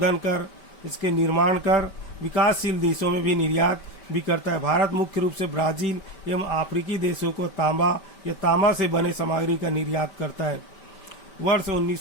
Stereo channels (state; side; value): late; right; 5.2 ms